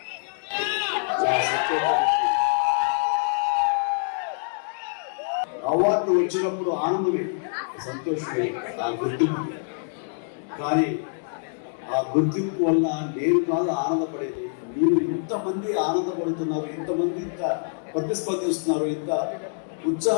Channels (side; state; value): right; silent; 61 dB below the other